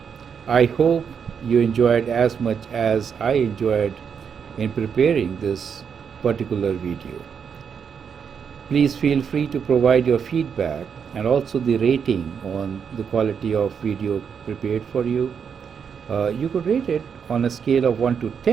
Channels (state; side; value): quieter; left; 6.9 dB